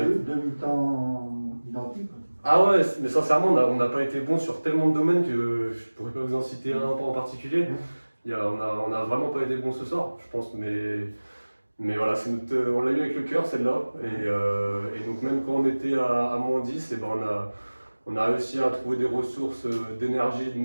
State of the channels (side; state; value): both; inverted; correlation -1.00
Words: mi-temps identiques. Ah ouais, mais sincèrement, on n'a pas été bon sur tellement de domaines que je pourrais pas vous en citer un en particulier. On a vraiment pas été bon ce soir, je pense. Mais voilà, on l'a eu avec le cœur celle-là. Et donc même quand on était à -10, et ben on a réussi à trouver des ressources d'énergie,